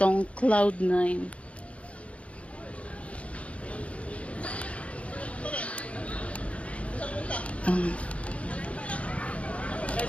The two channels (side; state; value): right; late; 0.063 ms